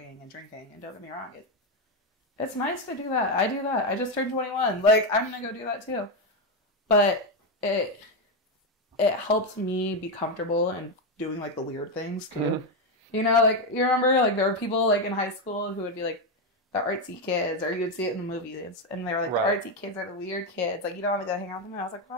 and drinking. And don't get me wrong, it's nice to do that. I do that. I just turned 21. Like, I'm gonna go do that, too. But it helped me be comfortable and doing like the weird things too. Mm-hmm. Like you remember like there were people like in high school who would be like the artsy kids, or you would see it in the movies, and they were like the artsy kids are the weird kids. Like you don't want to go hang out with them. And I was like,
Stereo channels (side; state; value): both; normal; correlation 0.08